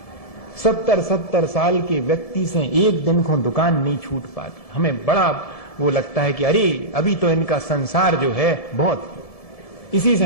70 साल के व्यक्ति से एक दिन को दुकान नहीं छूट पाती। हमें बड़ा वो लगता है कि अरे अभी तो इनका संसार जो है बहुत, इसी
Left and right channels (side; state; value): right; late; 1.7 ms